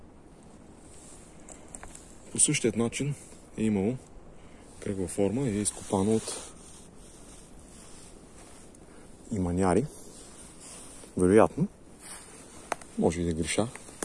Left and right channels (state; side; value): identical; both; correlation 1.00